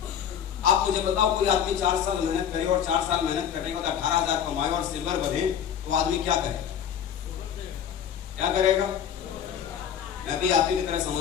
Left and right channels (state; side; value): quieter; right; 8.9 dB